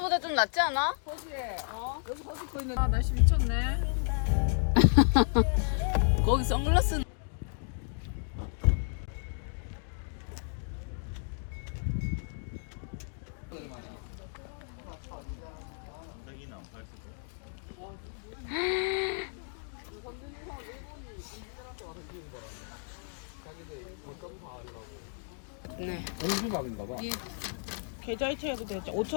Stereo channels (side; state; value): right; silent; 56 dB below the other